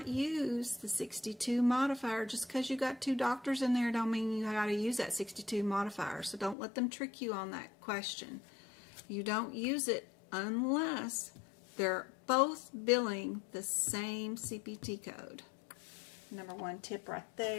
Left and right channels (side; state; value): right; drops out; at 6.6 s